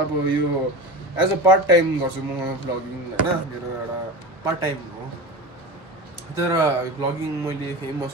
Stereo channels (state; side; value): normal; both; correlation 0.29